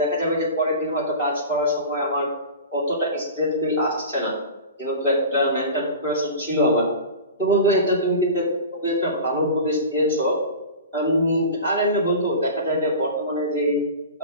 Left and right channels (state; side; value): inverted; both; correlation -0.33